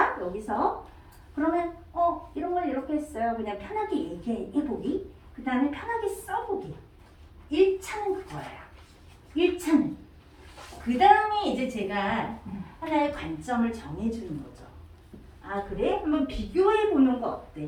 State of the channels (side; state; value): both; identical; correlation 1.00